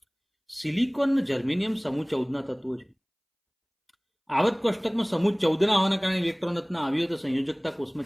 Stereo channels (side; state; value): both; identical; correlation 1.00